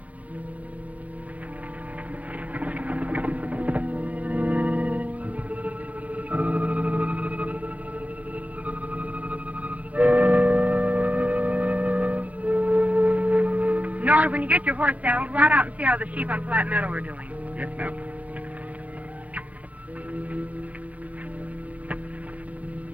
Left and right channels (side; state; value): left; late; 0.068 ms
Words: Nora, when you get your horse saddled, ride out and see how the sheep on Flat Meadow are doing. Yes, ma'am.